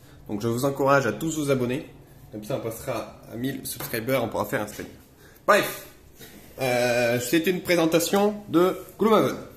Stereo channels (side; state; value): both; identical; correlation 1.00